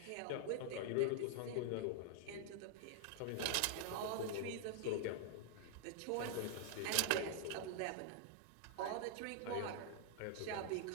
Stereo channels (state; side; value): different; both; correlation 0.00